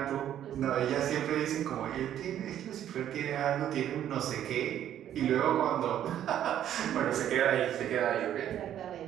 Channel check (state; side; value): quieter; left; 10.8 dB